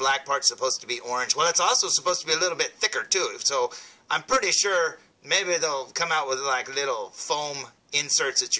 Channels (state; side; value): identical; both; correlation 1.00